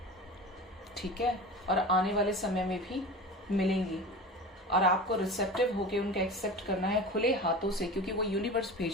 ठीक है, और आने वाले समय में भी मिलेंगी, और आपको रिसेप्टिव होके उनका एक्सेप्ट करना है खुले हाथों से, क्योंकि वो यूनिवर्स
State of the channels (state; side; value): normal; both; correlation 0.33